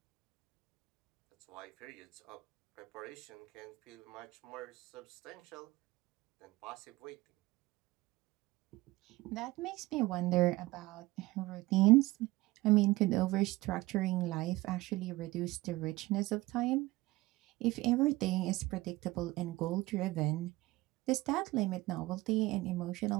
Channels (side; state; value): left; quieter; 19.5 dB